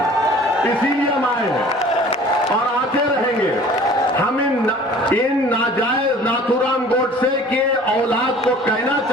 इसीलिए हम आए हैं और आते रहेंगे। हम इन नाजायज नाथूराम गोडसे के औलाद को कहना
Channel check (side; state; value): both; normal; correlation 0.48